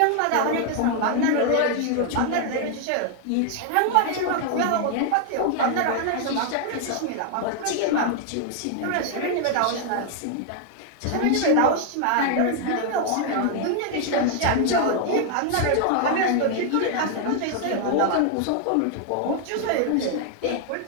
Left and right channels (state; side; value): different; both; correlation 0.00